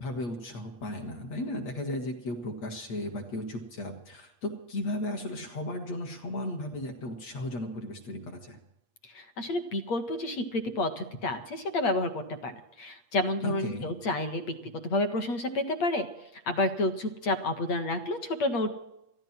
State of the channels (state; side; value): late; right; 8.4 ms